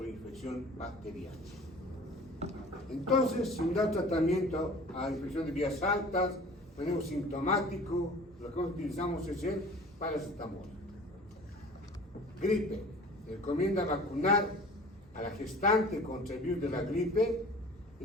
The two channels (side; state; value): both; normal; correlation 0.44